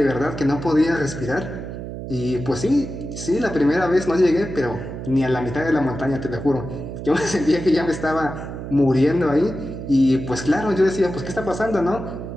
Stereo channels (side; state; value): right; noise; hum, 8 dB below the sound